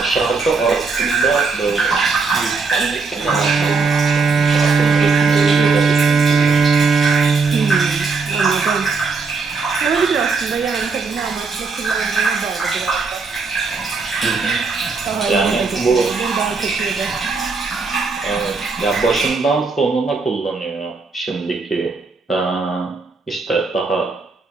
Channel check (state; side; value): quieter; left; 4.4 dB